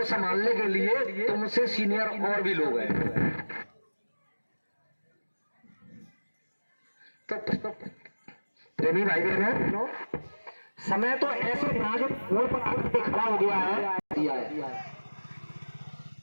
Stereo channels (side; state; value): both; inverted; correlation -1.00